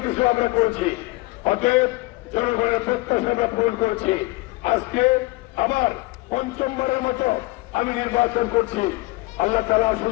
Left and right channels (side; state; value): right; quieter; 22.4 dB